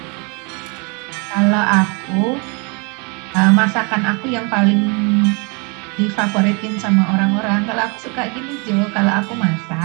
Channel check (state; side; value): quieter; left; 31.7 dB